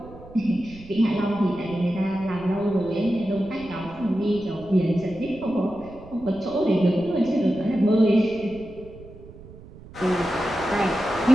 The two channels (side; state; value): right; noise; rumble, 19 dB below the sound